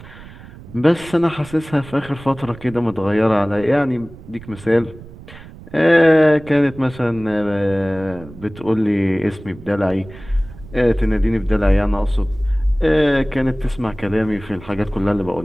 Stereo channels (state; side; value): noise; right; rumble, 18 dB below the sound